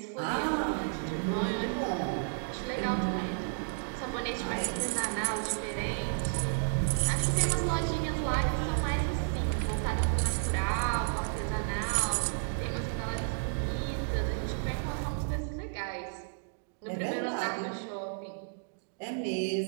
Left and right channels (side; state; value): left; silent; digital silence